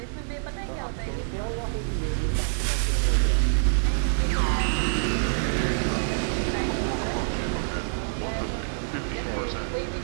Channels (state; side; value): silent; left; 61 dB below the other